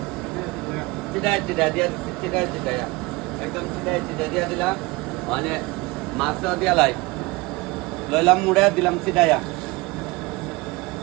চিটাই চিটা দিয়া চিটাই চিটাইয়া একদম চিটাই চিটা দিয়া দিলাম, মানে মাছটা দিয়া লাই লইলাম মুড়ে দিলাম চিটাইয়া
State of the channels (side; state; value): left; quieter; 23.3 dB